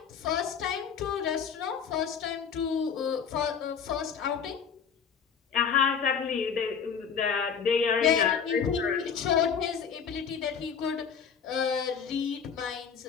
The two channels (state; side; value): quieter; right; 6.8 dB